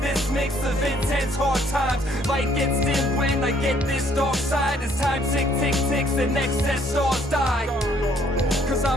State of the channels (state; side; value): normal; both; correlation 0.64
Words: this mix of intense hard times. Light gets dim when I get this dark side. As time tick, tick, ticks and excess stars die. Cause